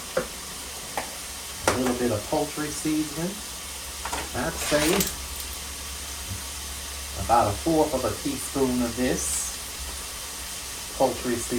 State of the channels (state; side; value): identical; both; correlation 1.00